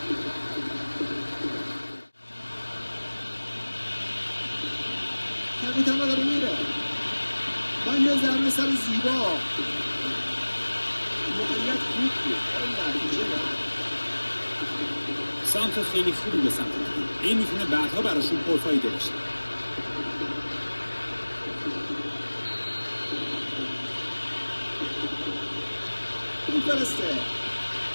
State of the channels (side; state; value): both; inverted; correlation -1.00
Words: کپیتان داره میره. با یه ضربه سر زیبا. موقعیت خوب بود. نتیجه نه. سانتر خیلی خوبی به سمت بود. این میتونه بعدها براشون پرفایده باشه. میفرسته.